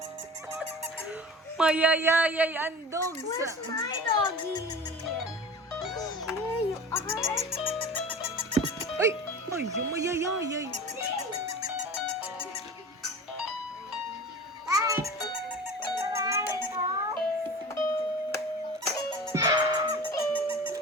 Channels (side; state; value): both; normal; correlation 0.37